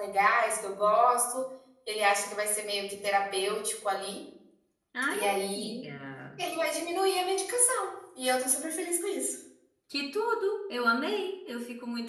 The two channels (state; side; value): identical; both; correlation 1.00